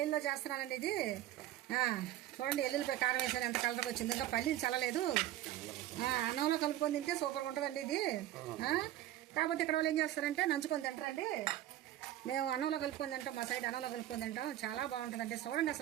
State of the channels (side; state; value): left; quieter; 13.4 dB